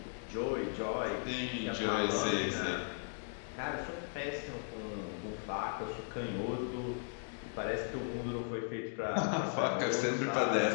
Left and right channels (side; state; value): right; silent; digital silence